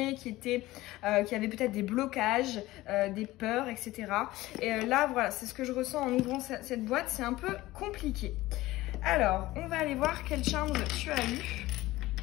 qui avait peut-être des blocages, des peurs, etc. Et là voilà, c'est ce que je ressens en ouvrant cette boîte, c'est un peu compliqué. Alors on va aller voir quelle charme tu as eu.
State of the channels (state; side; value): quieter; right; 17.7 dB